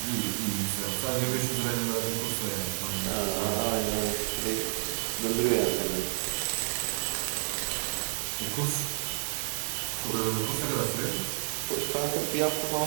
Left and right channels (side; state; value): left; silent; digital silence